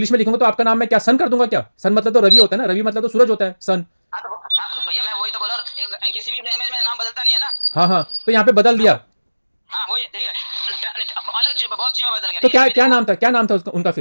में लिखूंगा तो आपका नाम मैं क्या सन कर दूंगा क्या? सन मतलब तो रवि होता है ना, रवि मतलब तो सूरज होता है, सन। हाँ तो भैया मैं वही तो बोला, किसी भी लैंग्वेज में नाम बदलता नहीं है ना। हाँ हाँ तो यहाँ पे बदल दिया। हाँ वही ठीक है, अलग चीज बहुत चीज में बदल गया। तो क्या नाम था उनका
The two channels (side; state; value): both; inverted; correlation -1.00